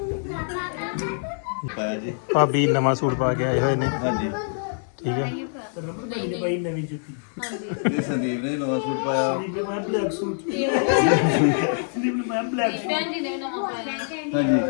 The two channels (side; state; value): right; silent; digital silence